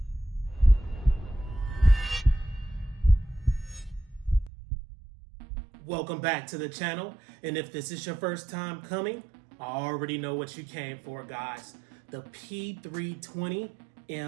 Welcome back to the channel, and if this is your first time coming, I already know what you came for, guys. The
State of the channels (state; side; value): drops out; left; at 4.5 s